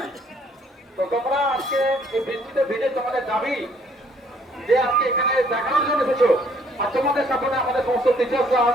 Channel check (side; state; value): both; normal; correlation 0.63